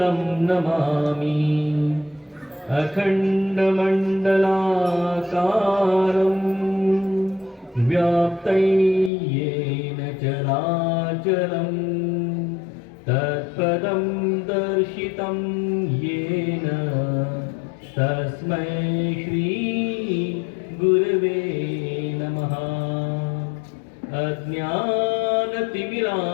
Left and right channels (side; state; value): right; drops out; at 9.1 s